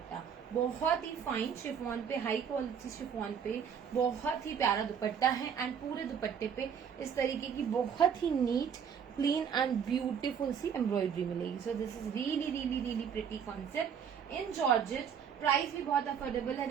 बहुत ही फाइन शिफॉन पे, हाई क्वालिटी शिफॉन पे बहुत ही प्यारा दुपट्टा है एंड पूरे दुपट्टे पे इस तरीके की बहुत ही नीट, क्लीन एंड ब्यूटीफुल सी एम्ब्रॉयडरी मिलेगी. So this is really really really pretty concept in georgette. Price भी बहुत अफोर्डेबल है.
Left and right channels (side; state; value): left; quieter; 7.5 dB